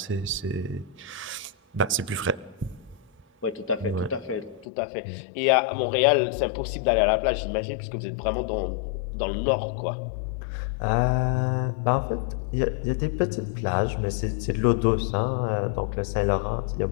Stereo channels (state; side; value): drops out; right; at 4.7 s